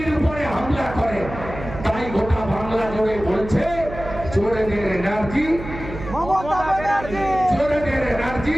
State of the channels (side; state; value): right; noise; hum, 11 dB below the sound